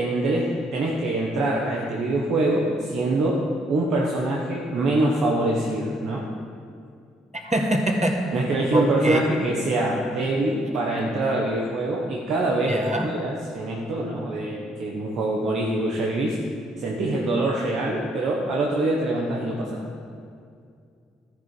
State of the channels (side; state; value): both; normal; correlation 0.68